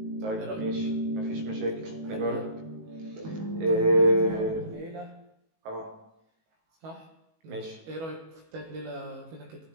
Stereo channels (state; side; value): late; left; 19 ms